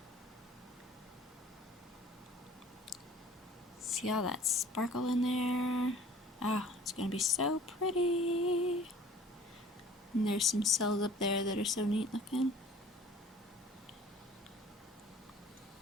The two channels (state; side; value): normal; both; correlation 0.49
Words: See all that sparkle in there? Oh, it's going to be so pretty. And there's some cells up there that are so neat looking.